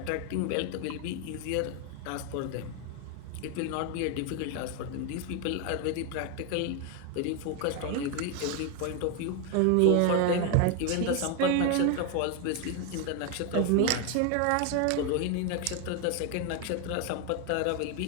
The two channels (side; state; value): both; different; correlation 0.01